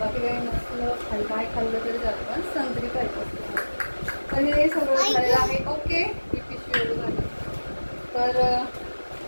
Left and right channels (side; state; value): both; inverted; correlation -1.00